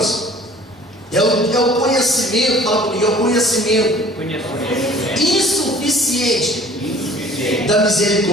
é o conhecimento, fala comigo, é o conhecimento insuficiente da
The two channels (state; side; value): normal; both; correlation 0.49